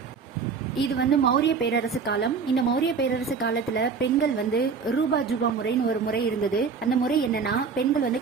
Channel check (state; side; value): quieter; left; 5.5 dB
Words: இது மௌரிய பேரரசு காலம். இந்த மௌரிய பேரரசு காலத்துல பெண்கள் ரூபா ஜூபா முறைன்னு ஒரு முறை இருந்தது. அந்த முறை என்னன்னா, பெண்கள்